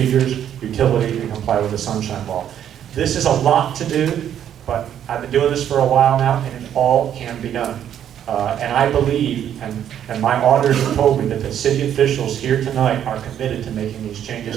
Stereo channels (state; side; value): quieter; left; 9.9 dB